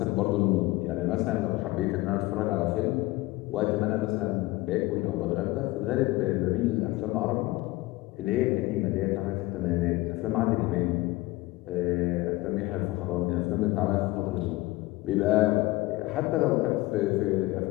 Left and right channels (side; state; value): right; quieter; 19.7 dB